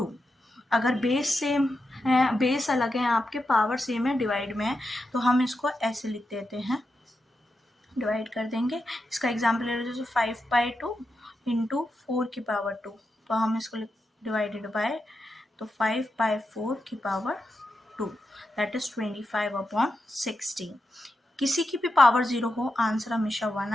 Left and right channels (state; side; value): normal; both; correlation 0.88